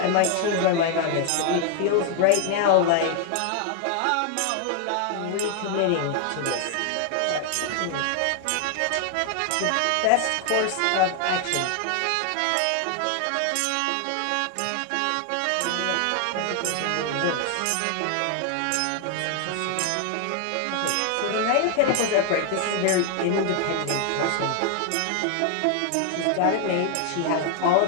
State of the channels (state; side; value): different; both; correlation 0.00